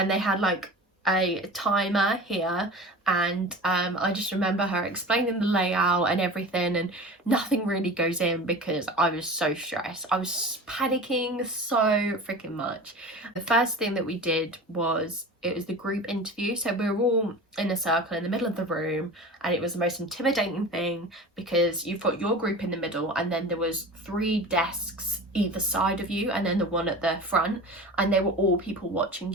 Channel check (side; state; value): both; normal; correlation 0.35